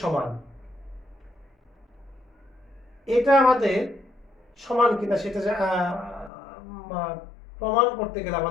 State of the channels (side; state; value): right; drops out; at 6.3 s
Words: সমান। এটা আমাদের সমান কিনা সেটা প্রমাণ করতে গেলে